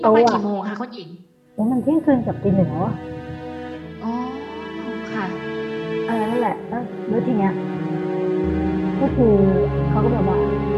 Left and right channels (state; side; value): identical; both; correlation 1.00